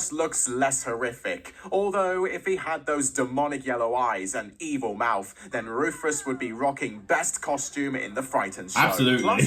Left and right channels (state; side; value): identical; both; correlation 1.00